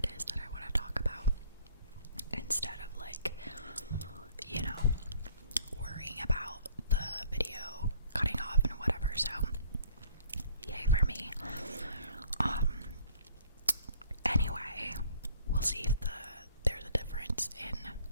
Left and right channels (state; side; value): inverted; both; correlation -0.56